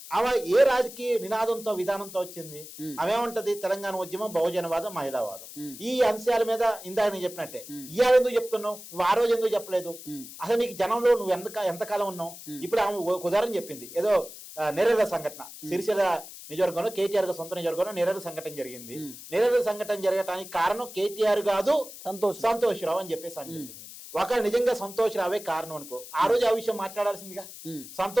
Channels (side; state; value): left; noise; hiss, 14 dB below the sound